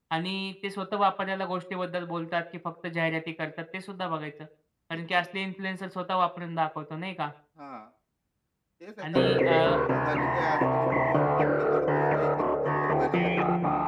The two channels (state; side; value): identical; both; correlation 1.00